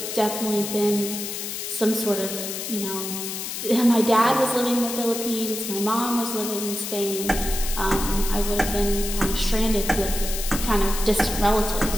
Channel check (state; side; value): noise; left; hiss, 6 dB below the sound